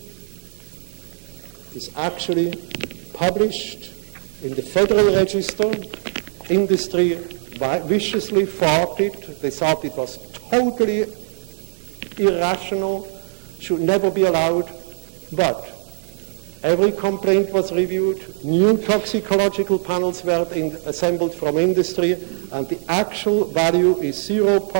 is actually published in the Federal Register. Industry viciously fought it. They thought it was totally irrational, should never be allowed, but every complaint was reviewed, new toxicological panels were assembled from industry, and the actual value is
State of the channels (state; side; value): silent; left; digital silence